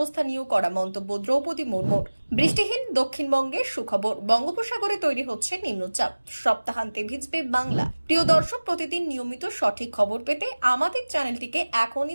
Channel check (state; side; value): inverted; both; correlation -1.00